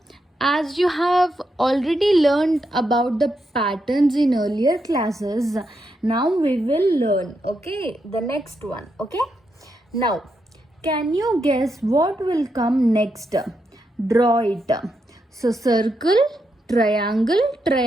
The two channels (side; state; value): both; normal; correlation 0.83